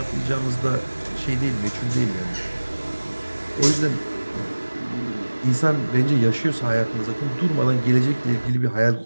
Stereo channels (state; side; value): inverted; both; correlation -1.00